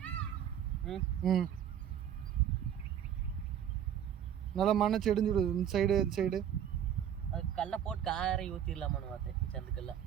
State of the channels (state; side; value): quieter; left; 9.6 dB